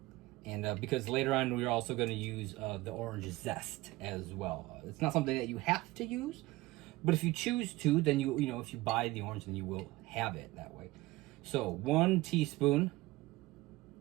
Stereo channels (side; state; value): left; quieter; 19.7 dB